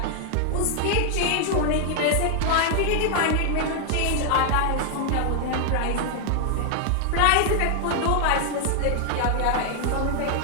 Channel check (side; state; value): both; different; correlation 0.00